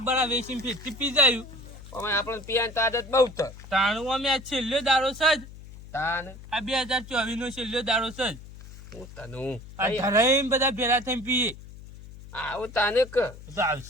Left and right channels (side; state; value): left; noise; hum, 16 dB below the sound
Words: બરા વેચીને ફેરથી પી જાય. આપણે પીવાની તો આદત બહુ તો તાણું અમે આ છેલ્લો દારો છે જ. તાન આ 2024 નો છેલ્લો દારો છે જ. હું તને આ ધરાઈને બધા ભેરા થઈને પીએ. આવું તાને કે તો